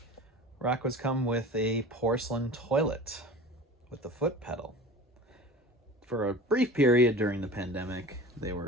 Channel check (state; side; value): normal; both; correlation 0.37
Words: Rockwoods come with a porcelain toilet with the foot pedal. For a brief period during the pandemic, they